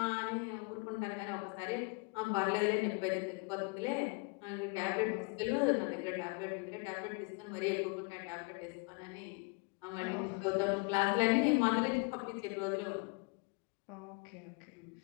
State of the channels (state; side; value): quieter; right; 31.4 dB